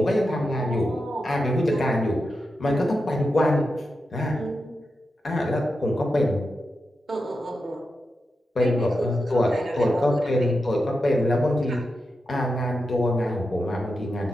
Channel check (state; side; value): normal; both; correlation 0.88